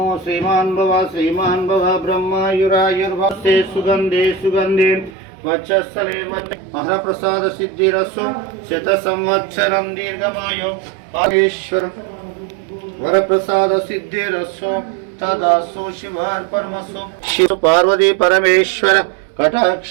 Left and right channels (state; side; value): drops out; left; at 5.1 s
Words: శ్రీమాన్ భవ బ్రహ్మయురాయుర్భస్తే సుగంధే సుగంధే వక్షస్థలే మహాప్రసాద సిద్ధిరస్సు శత సంవత్సరం దీర్ఘమాయో పారేశ్వర వరప్రసాద సిద్ధిరస్సు తదాసు శివార్పణమస్సు. శివ పార్వతీ పరమేశ్వర